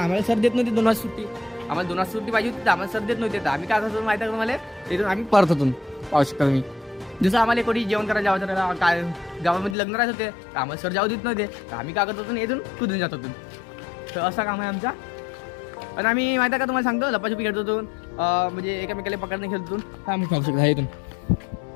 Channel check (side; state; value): right; drops out; at 9.8 s